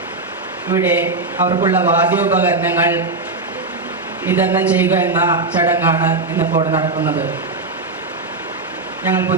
ഇവിടെ അവർക്കുള്ള വാദ്യോപകരണങ്ങൾ വിതരണം ചെയ്യുക എന്ന ചടങ്ങാണ് ഇന്നിപ്പോൾ നടക്കുന്നത്. ഞങ്ങൾ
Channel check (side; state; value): left; quieter; 3.5 dB